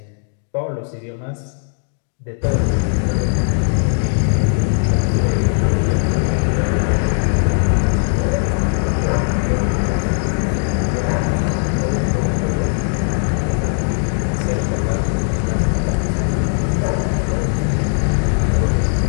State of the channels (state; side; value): silent; right; digital silence